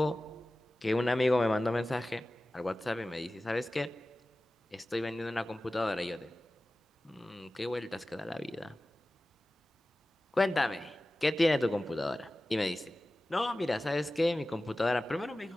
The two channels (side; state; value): both; normal; correlation 0.96